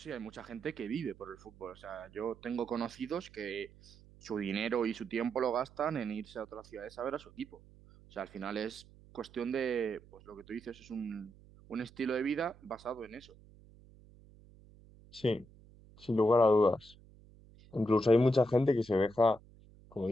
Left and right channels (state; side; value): noise; right; hum, 24 dB below the sound